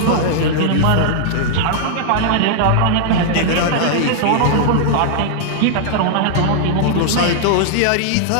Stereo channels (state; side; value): different; both; correlation -0.01